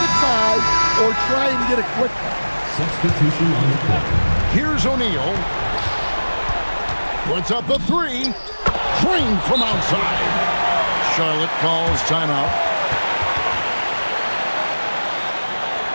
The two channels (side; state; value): both; inverted; correlation -1.00